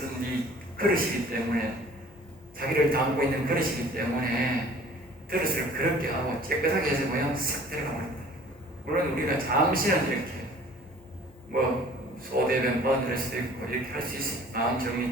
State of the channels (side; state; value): both; normal; correlation 0.49